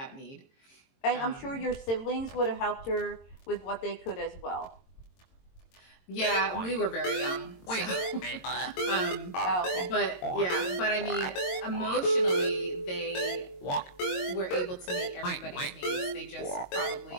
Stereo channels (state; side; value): late; right; 22 ms